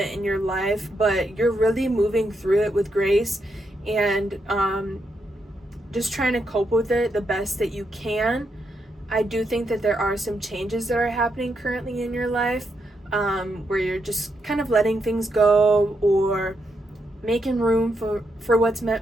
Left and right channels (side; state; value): both; normal; correlation 0.81